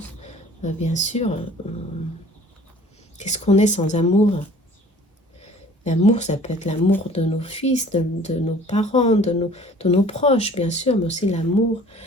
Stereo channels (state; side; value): normal; both; correlation 0.50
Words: Bien sûr, qu'est-ce qu'on est sans amour? L'amour, ça peut être l'amour de nos fils, de nos parents, de nos proches, bien sûr, mais aussi l'amour